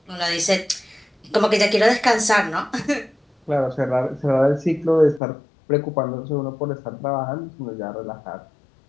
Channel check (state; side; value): drops out; right; at 5.2 s